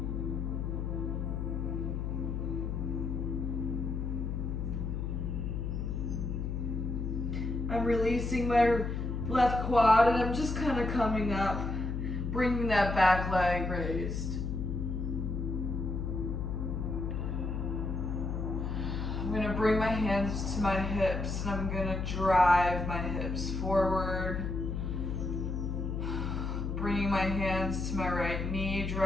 I'm releasing my left quad and I'm just kind of coming up, bringing that back leg raised. I'm gonna bring my hands to my hips and I'm gonna drive my hips forward. Bringing my hands to my right knee,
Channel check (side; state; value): left; noise; hum, 2 dB below the sound